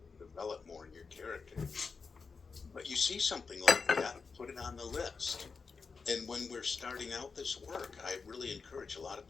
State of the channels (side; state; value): right; quieter; 4.9 dB